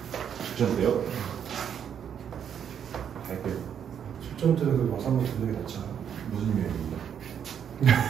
직전 때요? 갈게요. 직전 때는 그 와서 한번 듣는 게 낫잖아. 무슨 요일입니다?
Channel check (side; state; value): left; quieter; 8.5 dB